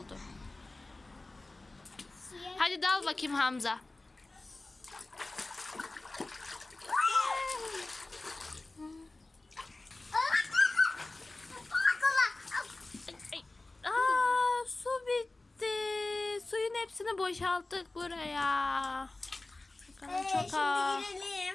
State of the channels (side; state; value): right; quieter; 3.0 dB